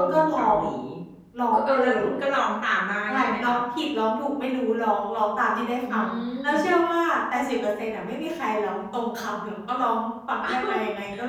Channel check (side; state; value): both; identical; correlation 1.00